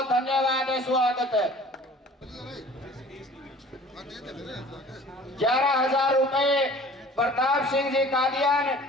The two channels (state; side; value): normal; both; correlation 0.47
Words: धन्यवाद है, स्वागत है। 11,000 रुपए प्रताप सिंह जी कादियान